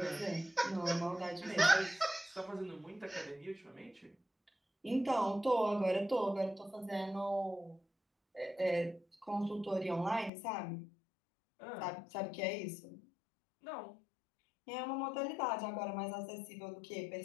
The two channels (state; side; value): drops out; right; at 10.3 s